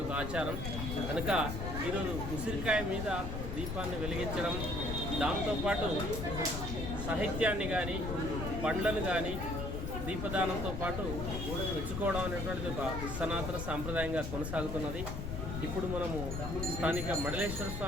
ఒక ఆచారం కనుక ఈరోజు ఉసిరికాయ మీద దీపాన్ని వెలిగించడం, దాంతోపాటు సాహిత్యాన్ని కానీ పండ్లను కానీ దీపదానంతో పాటు మెచ్చుకోవడం అనేటువంటిది ఒక సనాతన సాంప్రదాయంగా కొనసాగుతున్నది. ఇప్పుడు మనము స్థానిక మడలేశ్వర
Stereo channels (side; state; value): left; noise; rumble, 4 dB below the sound